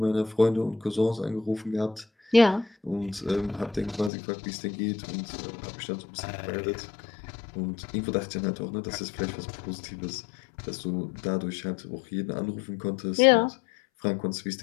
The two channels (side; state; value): right; drops out; at 4.1 s